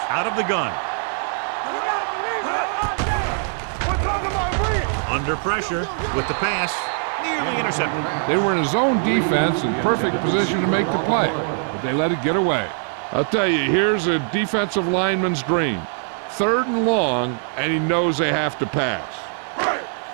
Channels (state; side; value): silent; left; 57 dB below the other